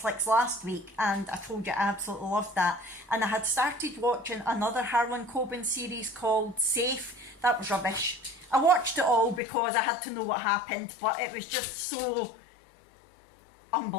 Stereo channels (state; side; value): drops out; right; at 9.4 s